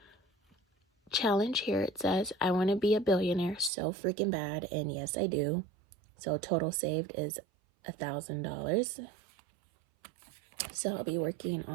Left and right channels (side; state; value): left; drops out; at 3.7 s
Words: challenge here. It says I want to be a billionaire so freaking bad, and yes I do. So total saved is $1,000. So I'll be working